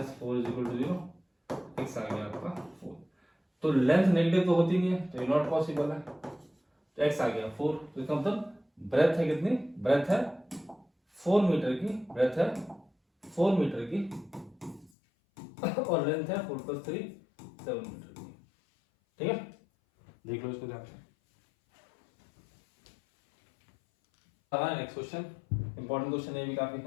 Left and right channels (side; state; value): right; drops out; at 14.9 s